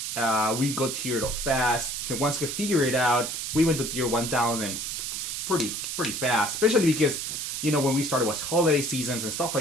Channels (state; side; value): noise; right; hiss, 4 dB below the sound